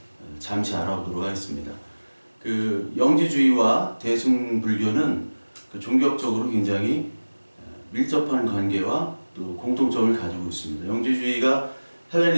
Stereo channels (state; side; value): inverted; both; correlation -1.00